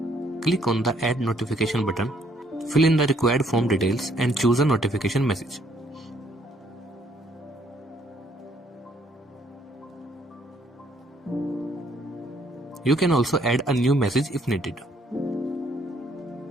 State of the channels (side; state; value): both; normal; correlation 0.67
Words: click on the Add Notification button, fill in the required form details and choose a notification message. You can also add a new message if needed.